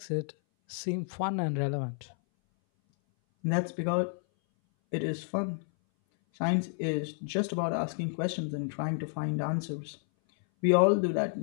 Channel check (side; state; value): right; silent; 57 dB below the other